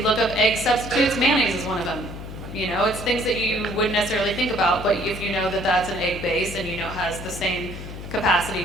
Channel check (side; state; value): left; noise; hum, 10 dB below the sound